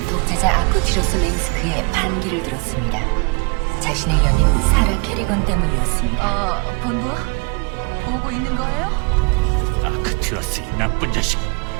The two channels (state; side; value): quieter; left; 31.6 dB